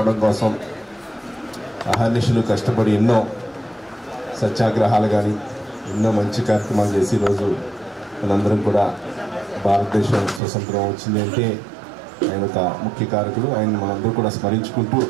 కోసం అహర్నిశలు కష్టపడి ఎన్నో సత్యాగ్రహాలు కానీ ఎన్నో మంచి కార్యక్రమాలు చేసి ఈరోజు మనందరం కూడా భారతదేశం స్వతంత్రం వచ్చింది అంటే ఆయన ఒక ముఖ్య కారకుడు. ఆయన మనందరూ కూడా స్మరించుకుంటూ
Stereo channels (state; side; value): drops out; left; at 10.4 s